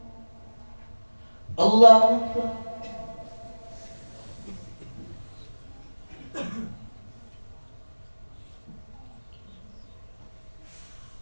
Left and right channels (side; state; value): both; inverted; correlation -1.00